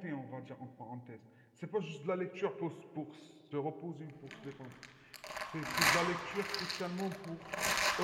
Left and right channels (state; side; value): identical; both; correlation 1.00